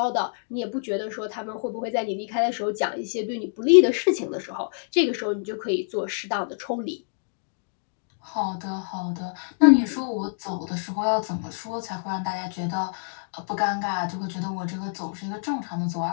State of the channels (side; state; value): right; silent; digital silence